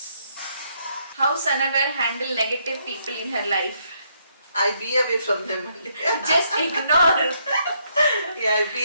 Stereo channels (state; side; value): inverted; both; correlation -0.73